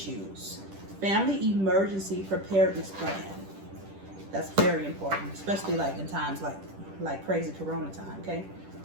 family emergency preparedness plan. That's very important, especially like in times like crazy corona time. Okay.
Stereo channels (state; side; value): late; left; 10 ms